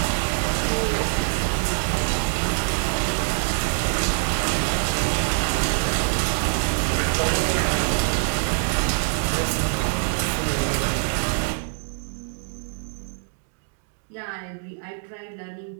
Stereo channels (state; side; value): silent; left; digital silence